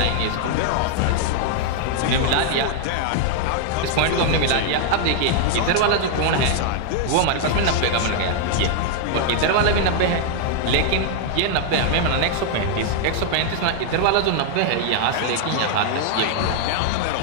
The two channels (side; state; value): both; different; correlation 0.00